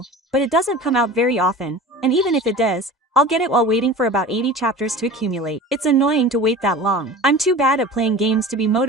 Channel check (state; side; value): normal; both; correlation 0.37